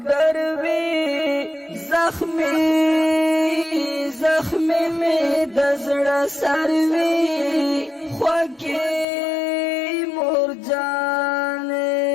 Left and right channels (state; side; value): drops out; right; at 9.1 s